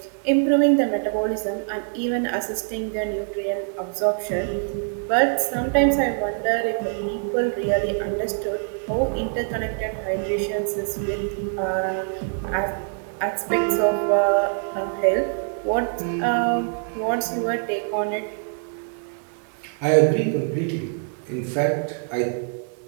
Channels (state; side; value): silent; left; 62 dB below the other